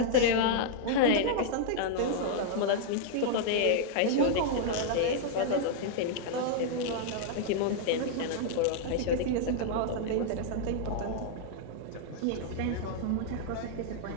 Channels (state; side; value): different; both; correlation -0.01